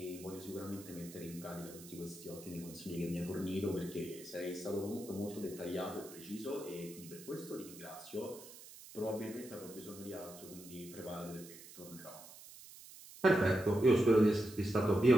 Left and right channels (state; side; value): noise; right; hiss, 17 dB below the sound